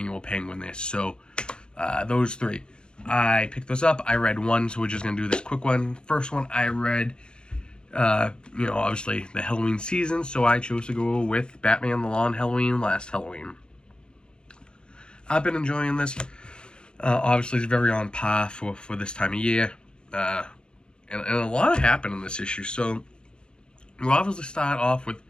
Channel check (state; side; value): late; right; 0.050 ms